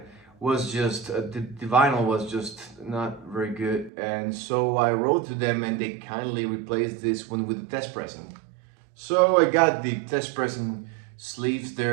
was just the vinyl was just not very good, and so I wrote to them, and they kindly replaced this one with a test pressing. So I got the test pressing sleeves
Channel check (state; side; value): drops out; left; at 3.9 s